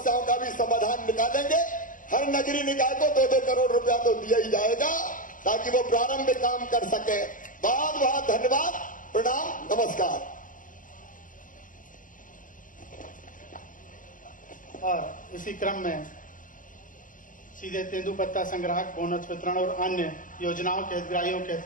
का भी समाधान निकालेंगे। हर नगरीय निकाय को 2-2 करोड़ रुपया तो दिया ही जाएगा, ताकि वो प्रारंभिक काम कर सके। बहुत बहुत धन्यवाद, प्रणाम, नमस्कार। और इसी क्रम में सीधे तेंदुपत्ता संग्राहक बोनस वितरण और अन्य योजनाओं के हितग्राहियों के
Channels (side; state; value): right; late; 0.39 ms